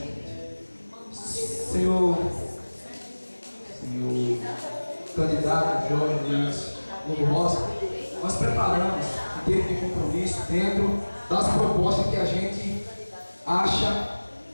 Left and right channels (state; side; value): inverted; both; correlation -1.00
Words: Senhor candidato Jorge Luiz Lobo Rosa, nós preparamos o termo de compromisso dentro das propostas que a gente acha